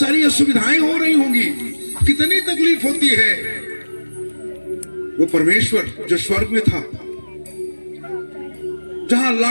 असुविधाएं हो रही होंगी, कितनी तकलीफ होती है। वो परमेश्वर जो स्वर्ग में था, जहां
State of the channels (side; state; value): both; inverted; correlation -1.00